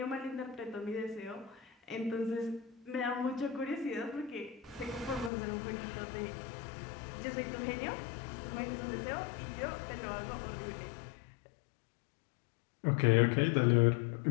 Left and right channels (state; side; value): drops out; right; at 5.3 s